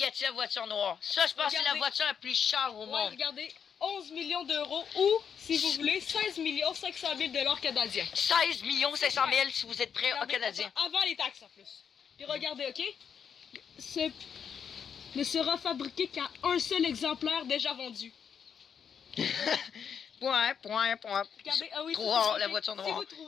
la voiture noire. Ça, je pense que c'est la Regardez. voiture la plus chère au Ouais, monde. regardez, 11 millions d'euros ou, si vous voulez, 16 millions 500 000 $ canadiens. 16 500 000 si vous êtes prêts au Regardez, Canadien. Avant les taxes en plus. Puis regardez, ok? Ce ne sera fabriqué qu'à un seul exemplaire déjà vendu. Point. Regardez, ah oui, Trop ça, c'est rare, la fait. voiture Si noire. vous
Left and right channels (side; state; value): right; quieter; 7.3 dB